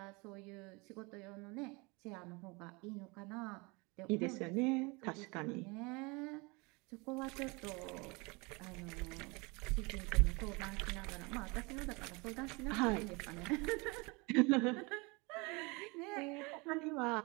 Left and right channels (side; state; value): left; quieter; 27.4 dB